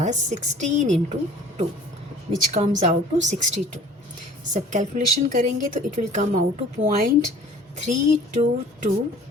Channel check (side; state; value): both; normal; correlation 0.48